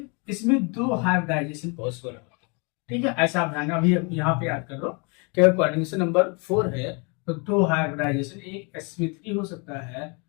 इसमें 2 हाइब्रिडाइजेशन पॉसिबल है। ठीक है, ऐसा आप ध्यान अभी यहाँ पे याद कर लो कि अगर कोऑर्डिनेशन नंबर 4 है तो 2 हाइब्रिडाइजेशन, एक sp3 हो सकता है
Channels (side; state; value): right; quieter; 32.8 dB